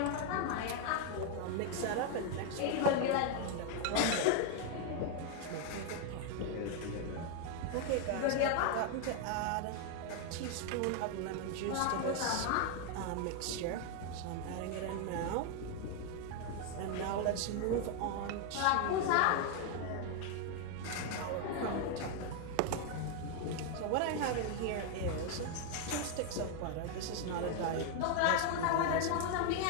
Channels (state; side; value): different; both; correlation 0.01